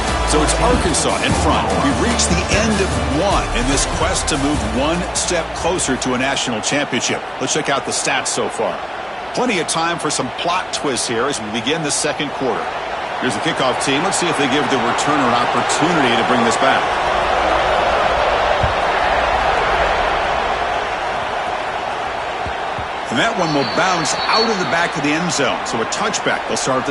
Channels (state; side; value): identical; both; correlation 1.00